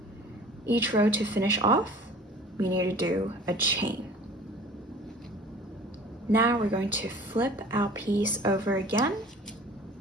each row to finish off? We need to do a chain. Now we're going to flip our piece over again.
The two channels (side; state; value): both; normal; correlation 0.46